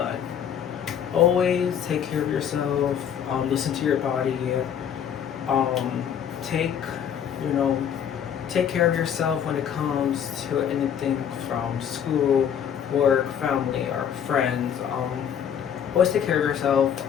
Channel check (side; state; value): right; quieter; 8.7 dB